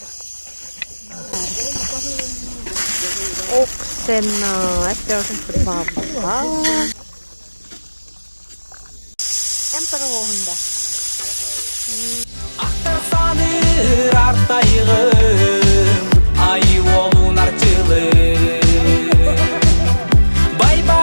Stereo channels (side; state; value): both; inverted; correlation -1.00